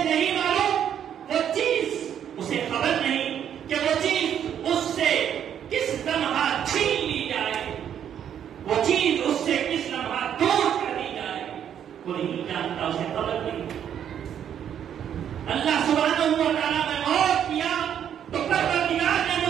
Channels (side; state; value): left; quieter; 9.3 dB